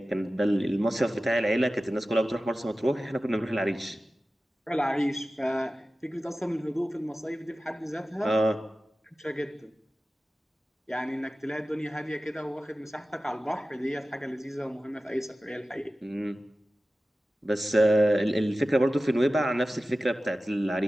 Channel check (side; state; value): both; normal; correlation 0.95